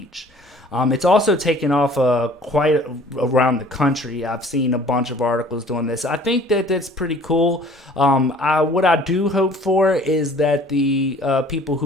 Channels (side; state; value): both; normal; correlation 0.52